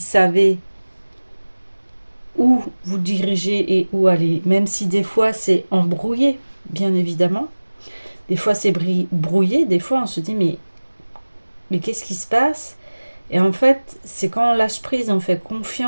où vous dirigez et où aller. Même si des fois c'est embrouillé, bien évidemment. Des fois c'est brouillé, des fois on se dit mais qu'est-ce qui se passe? Et en fait, c'est quand on lâche prise, on fait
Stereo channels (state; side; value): inverted; both; correlation -1.00